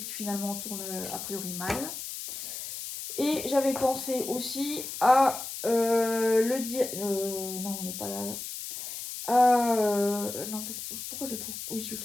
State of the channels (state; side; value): noise; left; hiss, 8 dB below the sound